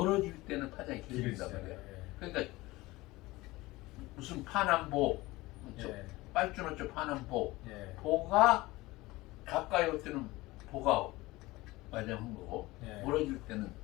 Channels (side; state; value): right; quieter; 20.2 dB